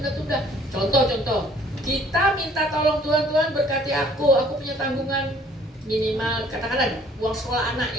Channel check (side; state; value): both; normal; correlation 0.57